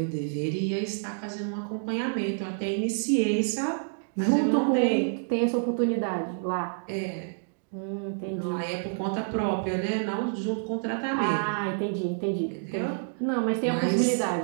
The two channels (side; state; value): left; silent; digital silence